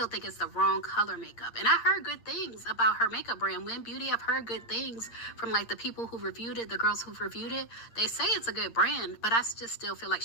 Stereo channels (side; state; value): right; late; 8.7 ms